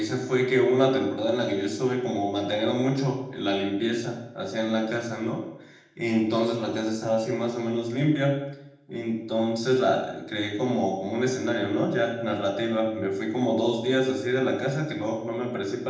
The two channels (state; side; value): identical; both; correlation 1.00